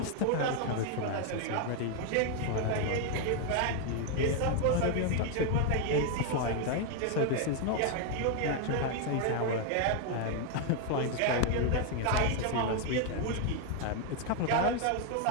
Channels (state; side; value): different; both; correlation 0.00